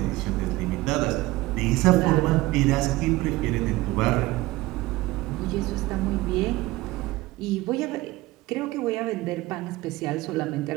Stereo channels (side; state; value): left; quieter; 19.1 dB